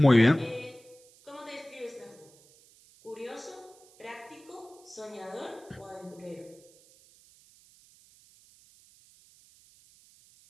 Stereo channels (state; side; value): noise; right; hiss, 26 dB below the sound